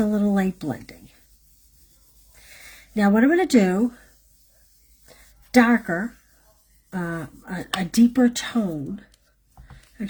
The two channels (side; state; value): both; identical; correlation 1.00